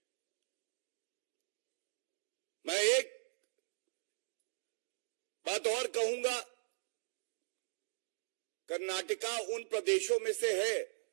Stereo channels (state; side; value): silent; left; digital silence